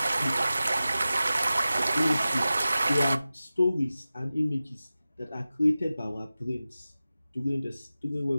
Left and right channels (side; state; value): both; inverted; correlation -0.95